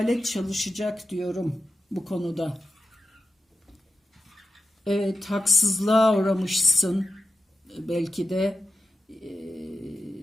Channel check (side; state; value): both; normal; correlation 0.91